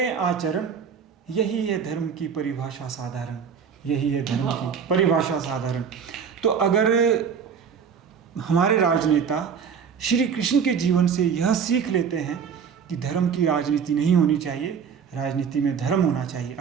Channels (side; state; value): left; quieter; 6.9 dB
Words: आचरण, यही है धर्म की परिभाषा साधारण, यही है धर्म की परिभाषा साधारण। तो अगर हमारे राजनेता श्री कृष्ण के जीवन से यह सीख लेते हैं कि धर्म की राजनीति नहीं होनी चाहिए, राजनीति में धर्म होना चाहिए,